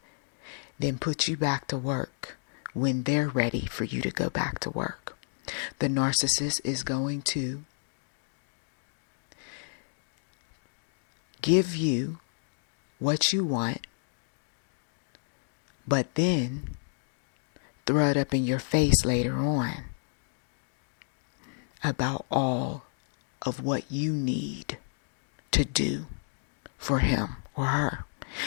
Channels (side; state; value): right; silent; digital silence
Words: then put you back to work when they're ready for you to go back to work. The narcissist is going to give you what you want, but then throw it up in your face later on about all of what you need to do for him or her.